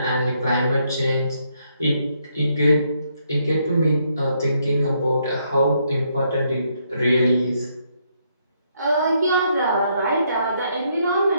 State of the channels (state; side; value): inverted; both; correlation -0.74